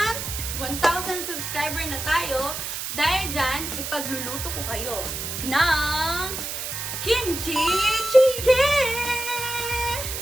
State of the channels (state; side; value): noise; right; hiss, 5 dB below the sound